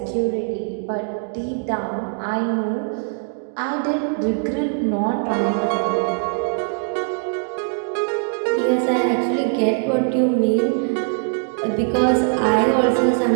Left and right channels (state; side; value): silent; left; 58 dB below the other